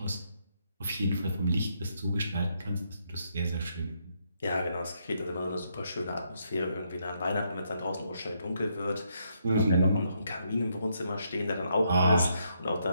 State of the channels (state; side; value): inverted; both; correlation -0.76